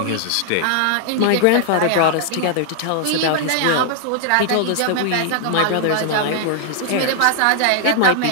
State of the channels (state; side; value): different; both; correlation 0.00